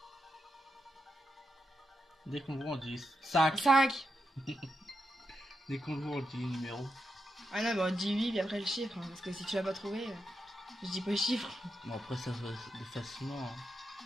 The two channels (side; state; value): both; normal; correlation 0.86